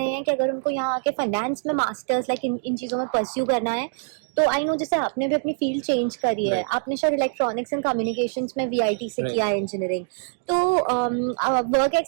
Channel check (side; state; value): left; silent; digital silence